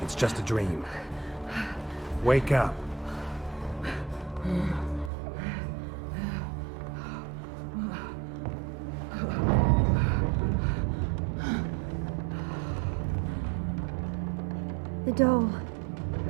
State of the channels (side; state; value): left; drops out; at 5.1 s